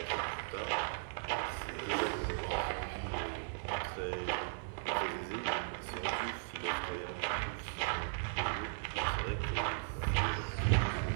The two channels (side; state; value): left; silent; 53 dB below the other